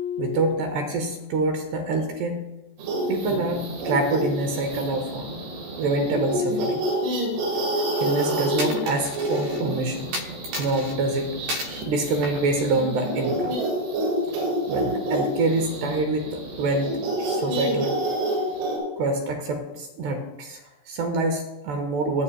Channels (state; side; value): late; left; 14 ms